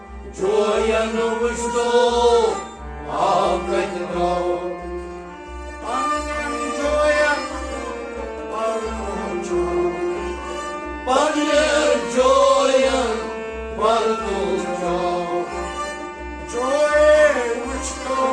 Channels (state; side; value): identical; both; correlation 1.00